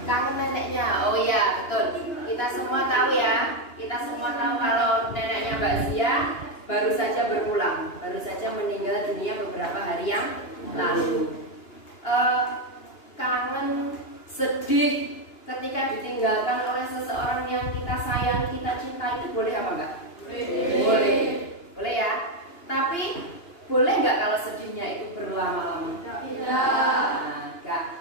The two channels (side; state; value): right; late; 2.9 ms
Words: Kangen neneknya. Oh iya, betul. Kita semua tahu ya. Kita semua tahu kalau neneknya Mbak Zia baru saja berpulang, baru saja meninggal dunia beberapa hari yang lalu. Kangen, sedih ketika ditinggalkan oleh seseorang yang kita sayang, kita cinta, itu boleh apa enggak? Boleh. Boleh ya. Tapi boleh nggak kalau sedihnya itu berlama-lama?